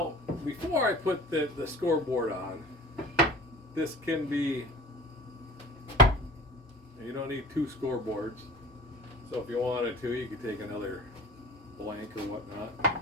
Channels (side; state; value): both; normal; correlation 0.41